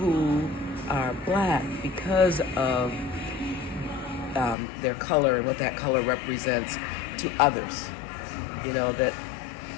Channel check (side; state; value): right; drops out; at 4.5 s